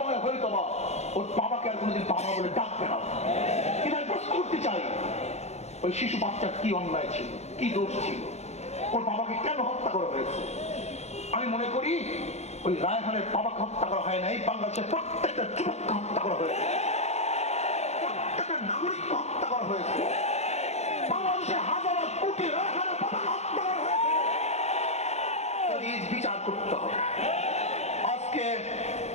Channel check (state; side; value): late; right; 0.32 ms